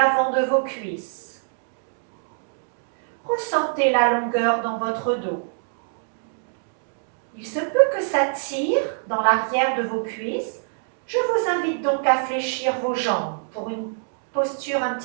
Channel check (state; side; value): silent; left; digital silence